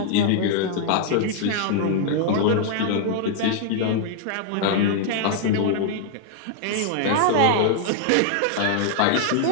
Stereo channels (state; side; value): different; both; correlation 0.00